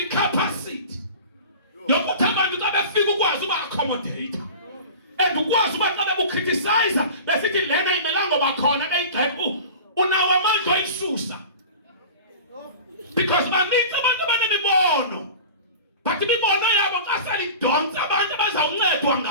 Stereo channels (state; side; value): inverted; both; correlation -0.36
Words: capacity yokuthi abantu xa befika ukwazi uba accommodate? and ukwazi uba xa bebukriticize besithi lena imelanga ngoba khona beyigxeka unawo amandla oyisusa because baninzi abantu abanemibono but imibono yabo xa selidonsa abantu abazawuncedwa